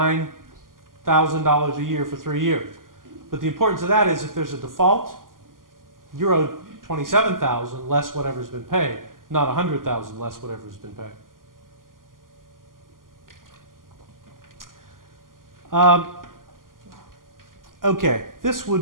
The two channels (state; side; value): late; left; 0.91 ms